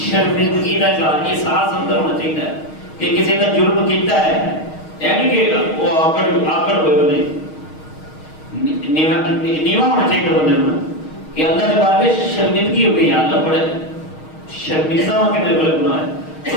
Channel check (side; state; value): right; late; 6.4 ms